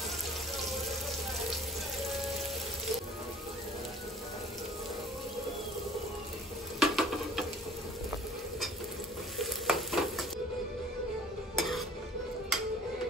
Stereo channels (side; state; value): both; normal; correlation 0.50